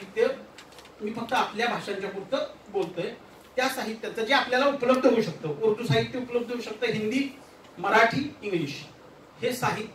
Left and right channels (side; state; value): both; identical; correlation 1.00